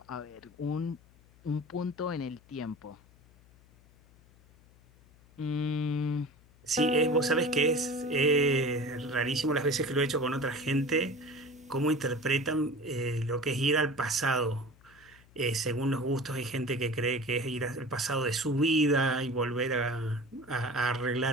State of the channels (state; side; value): noise; left; hum, 27 dB below the sound